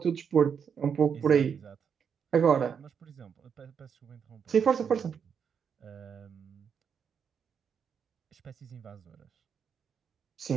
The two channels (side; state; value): left; quieter; 7.1 dB